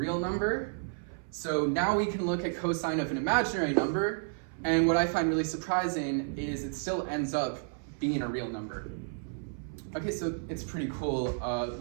number. So now we can look at cosine of an imaginary number, and what I find really surprising is it still ends up being a real number. Okay, so it's pretty cool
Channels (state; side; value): silent; left; 57 dB below the other